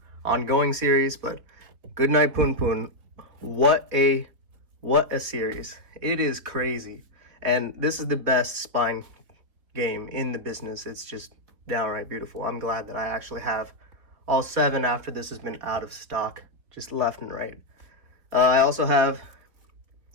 ongoing series, but Good Night Punpun, what a series. It is crazy. And this is the best spine game in the business. It's just downright beautiful. I'm glad that I actually have all 7 after this has been out of stock, just left and right. I also have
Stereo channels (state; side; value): late; left; 3.9 ms